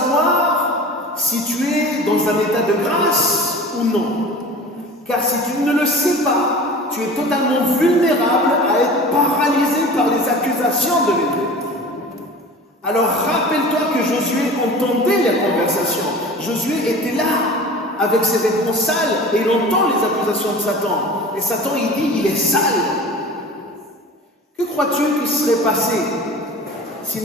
si tu es dans un état de grâce ou non. Car si tu ne le sais pas, tu es totalement vulnérable à être paralysé par les accusations de l'ennemi. Alors rappelle-toi que Josué entendait la conversation. Josué était là avec ses vêtements sales et il entend les accusations de Satan. Et Satan, il dit, il est sale. Que crois-tu qu'il serait passé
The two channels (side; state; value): both; normal; correlation 0.38